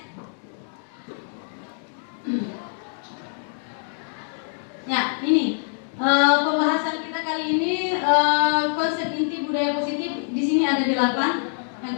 Ya, ini pembahasan kita kali ini konsep inti budaya positif. Di sini ada 8. Yang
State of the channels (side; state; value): right; silent; 62 dB below the other